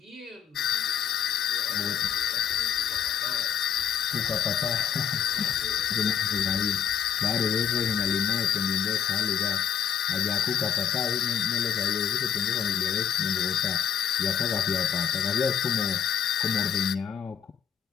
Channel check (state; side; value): quieter; right; 8.8 dB